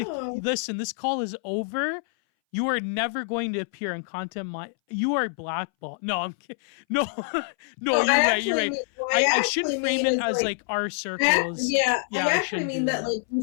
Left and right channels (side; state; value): right; silent; 60 dB below the other